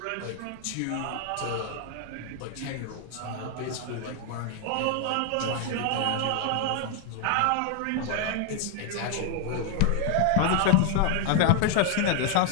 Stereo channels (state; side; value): different; both; correlation 0.00